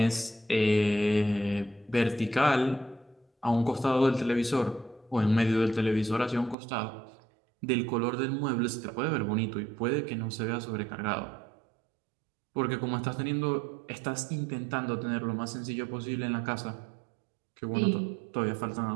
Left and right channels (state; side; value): drops out; left; at 6.6 s